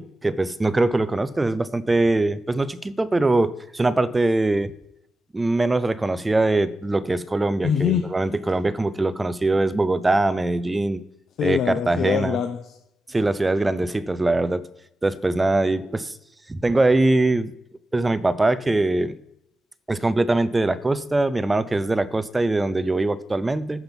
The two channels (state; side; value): normal; both; correlation 0.93